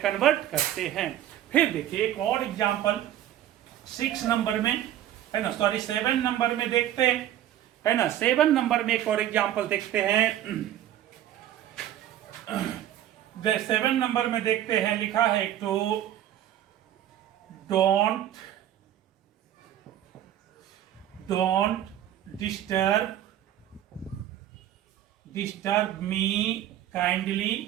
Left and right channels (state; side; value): quieter; left; 11.9 dB